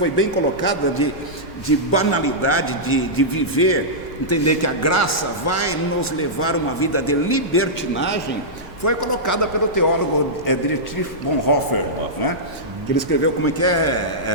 bem colocada de banalidade, de viver, entender que a graça vai nos levar a uma vida de libertinagem, foi colocada pelo teólogo Dietrich Bonhoeffer, né? Que ele escreveu como é que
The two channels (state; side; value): normal; both; correlation -0.12